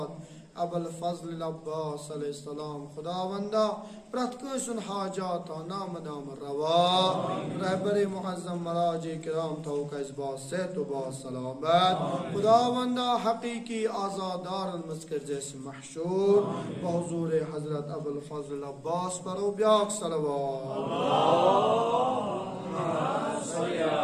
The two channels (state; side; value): identical; both; correlation 1.00